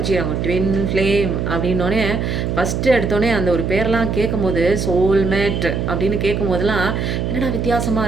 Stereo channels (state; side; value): noise; right; hum, 1 dB below the sound